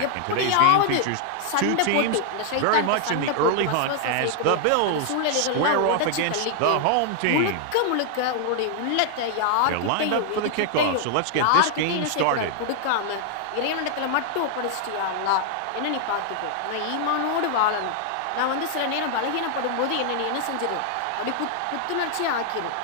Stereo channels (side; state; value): both; different; correlation 0.00